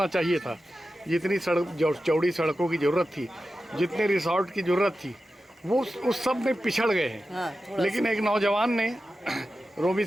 चाहिए था, जितनी चौड़ी सड़कों की ज़रूरत थी, जितने रिसोर्ट की ज़रूरत थी, वो उस सब में पिछड़ गए हैं। लेकिन एक नौजवान ने रोमी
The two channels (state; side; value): normal; both; correlation 0.92